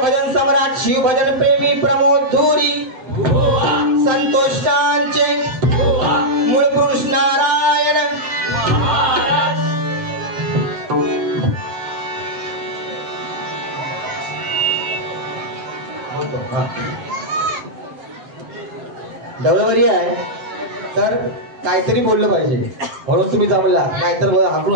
भजन सम्राट शिव भजन प्रेमी प्रमोद धुरी संतोषांचे मूळ पुरुष नारायण डबलवरी आहे तर काहीतरी बोललं पाहिजे म्हणून तुम्ही जमला नाहीतर हाकून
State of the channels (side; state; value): left; late; 7.6 ms